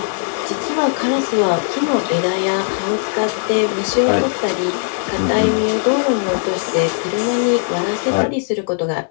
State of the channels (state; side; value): silent; right; 56 dB below the other